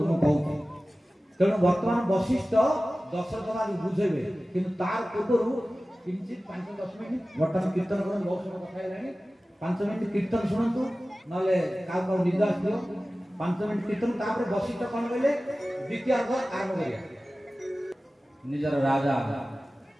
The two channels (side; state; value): both; normal; correlation 0.96